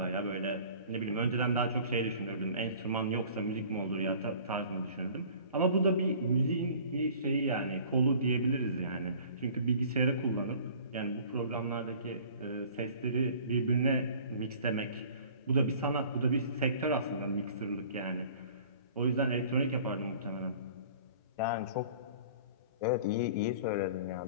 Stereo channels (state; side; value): inverted; both; correlation -0.48